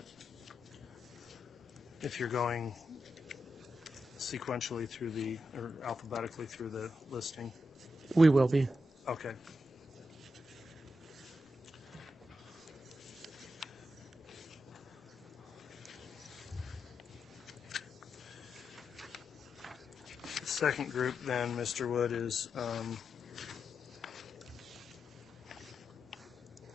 If you're going sequentially through or alphabetically through the listing. We will be. Okay. The second group then, Mr. Wood, is I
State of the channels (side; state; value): both; normal; correlation 0.86